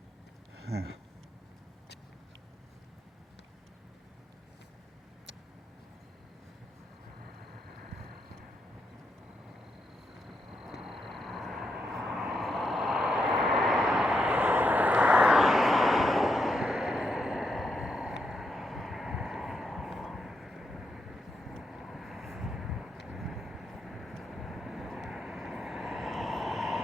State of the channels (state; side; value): normal; both; correlation 0.81